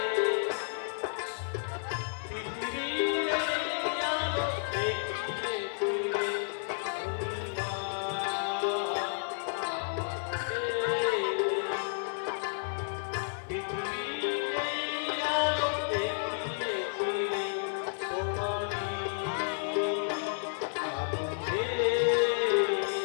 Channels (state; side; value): silent; right; digital silence